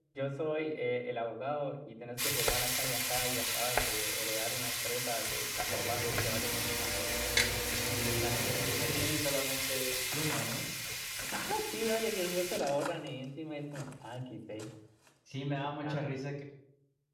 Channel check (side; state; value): both; identical; correlation 1.00